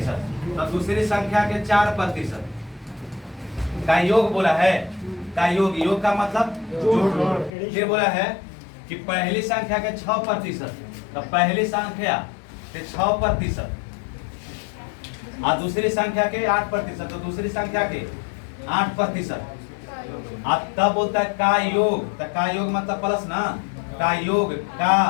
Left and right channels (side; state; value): right; drops out; at 7.5 s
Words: तो दूसरी संख्या के 4% का योग बोला है, का योग का मतलब जोड़। ये बोला है कि पहली संख्या के 6%, तो पहली संख्या के 6% और दूसरी संख्या के 8%, तो दूसरी संख्या के 8%। अब तब होता है का योग, तो का योग मतलब प्लस ना, का योग का